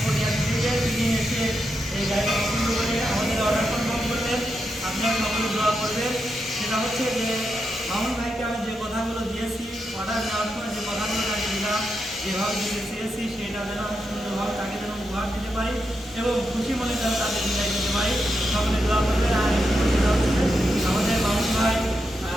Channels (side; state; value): both; normal; correlation 0.85